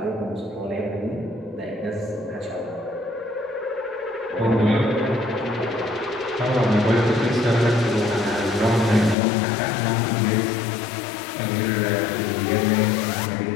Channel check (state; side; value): drops out; right; at 9.2 s